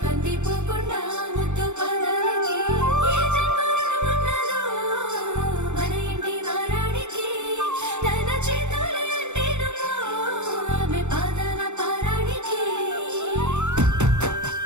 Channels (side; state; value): left; late; 0.84 ms